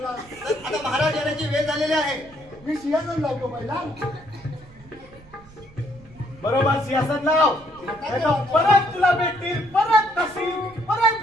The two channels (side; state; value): right; noise; rumble, 23 dB below the sound